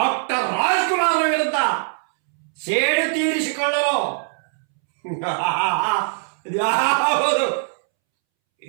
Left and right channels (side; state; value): left; silent; 65 dB below the other